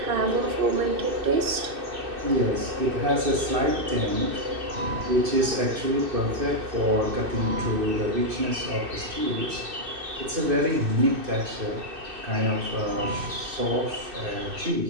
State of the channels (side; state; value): left; late; 2.6 ms